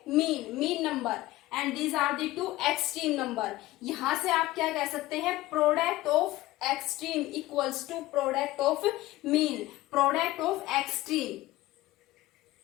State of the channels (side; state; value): right; quieter; 17.3 dB